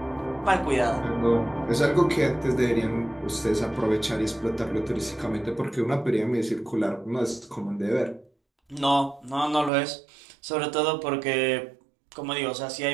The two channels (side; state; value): left; drops out; at 9.7 s